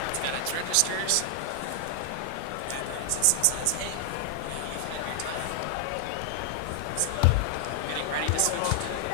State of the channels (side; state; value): both; different; correlation 0.00